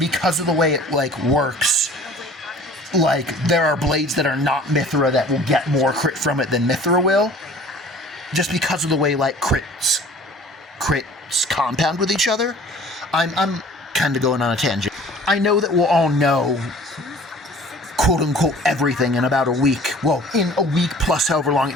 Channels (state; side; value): normal; both; correlation 0.48